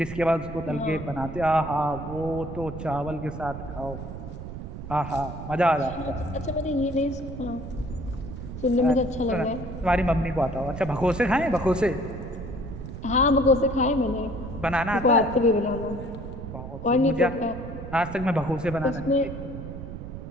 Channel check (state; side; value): noise; right; rumble, 9 dB below the sound